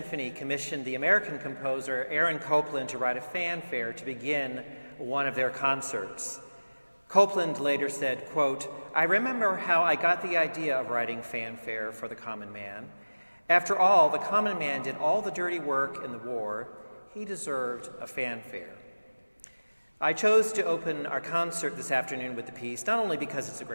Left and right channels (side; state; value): both; inverted; correlation -1.00